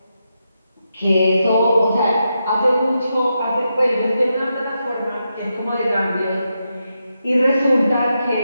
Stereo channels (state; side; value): inverted; both; correlation -0.86